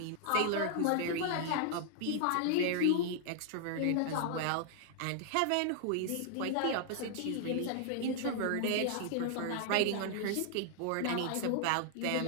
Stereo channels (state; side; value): different; both; correlation 0.00